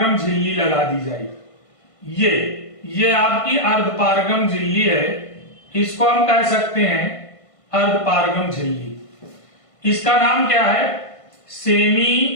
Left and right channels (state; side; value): late; right; 1.5 ms